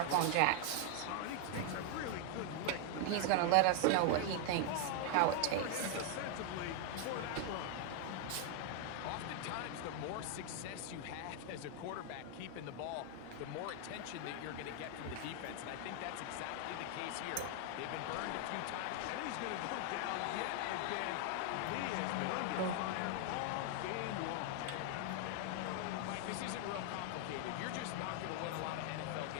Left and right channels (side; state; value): both; different; correlation 0.00